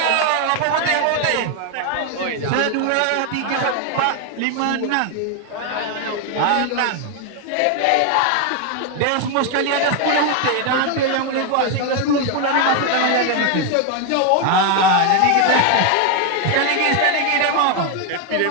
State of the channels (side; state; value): both; different; correlation 0.01